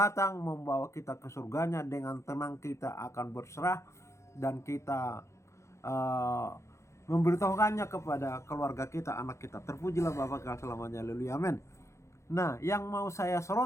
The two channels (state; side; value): late; right; 0.14 ms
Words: membawa kita ke surganya. Dengan tenang kita akan berserah dan kita memberitahukannya kepada keluarga kita, anak kita. Terpujilah Bapa kekal selamanya. Haleluya, amin. Nah, yang mau saya